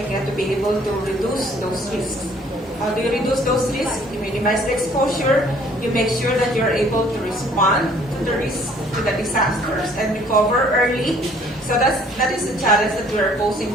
get to be able to reduce those risks. How do you reduce those risks? You minimize the exposure, you make sure that you're able to respond to the risk, to the disasters, and recover early. So that is the challenge that we're posing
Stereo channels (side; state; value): both; normal; correlation 0.58